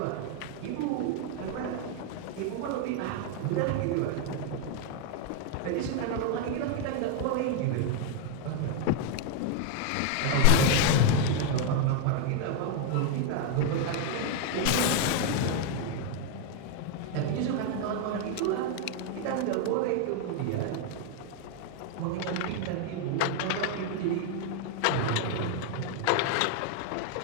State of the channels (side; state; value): both; different; correlation 0.00